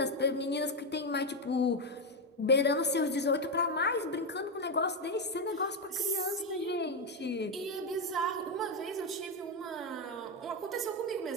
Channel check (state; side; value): normal; both; correlation 0.07